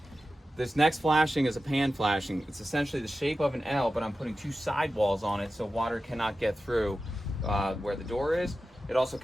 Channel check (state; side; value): normal; both; correlation 0.93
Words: This next flashing is a pan flashing. It's essentially the shape of an L, but I'm putting two sidewalls on it so water cannot get through where the door is. It also